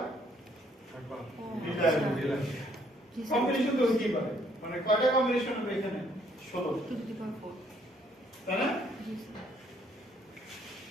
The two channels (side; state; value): both; normal; correlation 0.66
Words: কম্বিনেশন তো হইতেই পারে, মানে কয়টা কম্বিনেশন হবে এখানে? 16, 2 to the power 4। তাই না? জি sir.